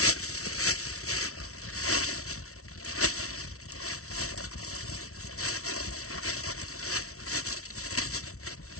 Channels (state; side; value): late; right; 0.63 ms